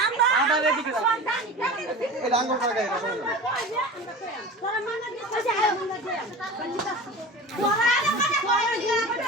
আমরা এদিকে এই ডাঙ্গর টাকা এটা তোরা মানে দিছে আয় মনে দে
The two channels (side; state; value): both; normal; correlation 0.34